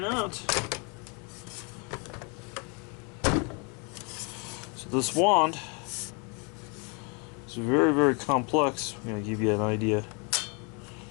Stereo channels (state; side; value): quieter; right; 33.9 dB